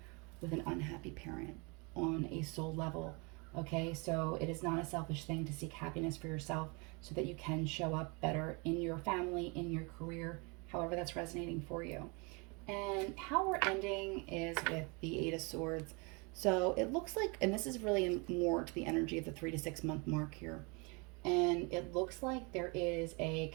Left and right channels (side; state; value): left; quieter; 30.4 dB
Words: with an unhappy parent on a soul level. Okay, so it is not a selfish thing to seek happiness for yourself so that you can show up better in your family, in your career, however that's resonating for you. And how we're ending is with the Eight of Swords. So it looks like, and this is really more to the energy of the 3 to 6 month mark here. And it looks like there is a